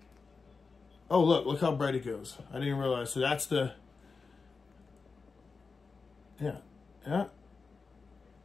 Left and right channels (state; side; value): quieter; right; 4.6 dB